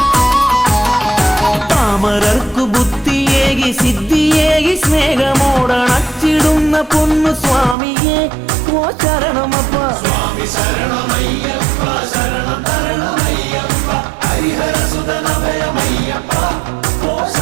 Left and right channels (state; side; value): drops out; left; at 7.8 s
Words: താമരർക്കു ബുദ്ധിയേകി സിദ്ധിയേകി സ്നേഹമോടണച്ചിടുന്ന പൊന്നു സ്വാമിയെ ഓ ശരണമപ്പ സ്വാമി ശരണമയ്യപ്പ ശരണം തരണമയ്യപ്പ ഹരിഹരസുതനഭയമയ്യപ്പ ഓ